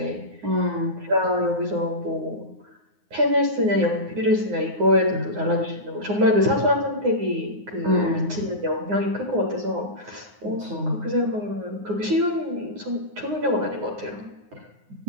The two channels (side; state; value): left; late; 9.6 ms